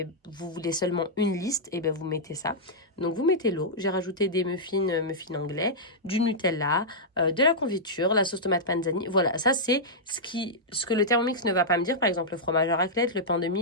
voulez seulement une liste, et bien vous mettez ça. Donc vous mettez l'eau. J'ai rajouté des muffins anglais, du Nutella, de la confiture, la sauce tomate panzani. Voilà, ça c'est ce que le Thermomix ne va pas me dire. Par exemple, le fromage à raclette, le pain de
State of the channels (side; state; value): both; normal; correlation -0.09